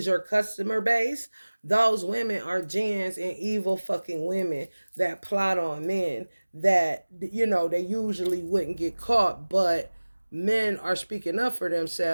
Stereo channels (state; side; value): inverted; both; correlation -1.00